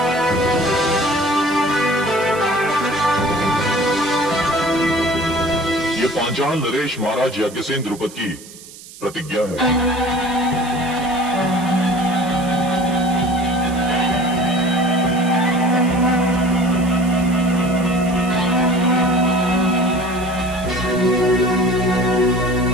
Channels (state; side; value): noise; right; hiss, 18 dB below the sound